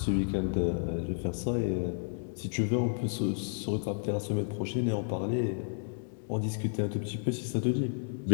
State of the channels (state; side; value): silent; right; digital silence